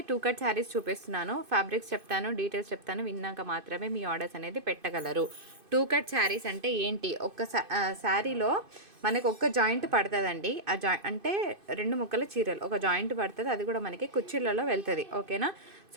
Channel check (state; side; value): late; left; 2.5 ms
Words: 2 cut saris చూపిస్తున్నాను. Fabrics చెప్తాను, details చెప్తాను, విన్నాక మాత్రమే మీ ఆర్డర్స్ అనేది పెట్టగలరు. 2 కట్ శారీస్ అంటే ఏంటి? ఒక శారీలో మనకు ఒక్క జాయింట్ పడుతుందండి. ఆ అంటే 2 ముక్కల చీరలు ఒక జాయింట్ పడుతుంది, అది కూడా మనకి కుర్చీలలో వెళ్తుంది. ఓకేనా?